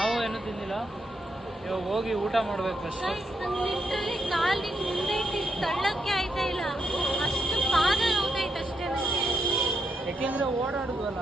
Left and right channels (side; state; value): both; normal; correlation 0.82